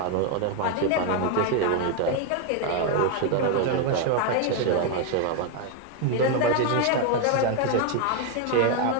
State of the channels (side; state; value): both; different; correlation 0.01